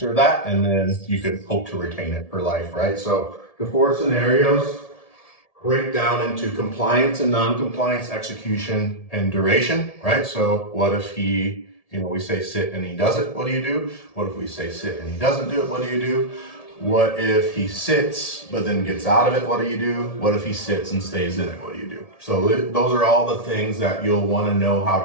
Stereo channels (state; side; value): late; right; 1.7 ms